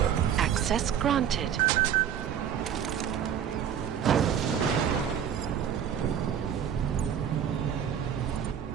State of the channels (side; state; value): left; quieter; 8.9 dB